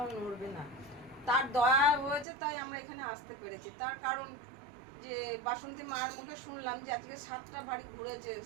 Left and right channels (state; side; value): drops out; left; at 2.2 s